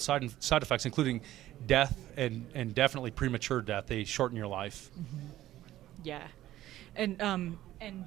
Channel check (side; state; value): left; quieter; 14.2 dB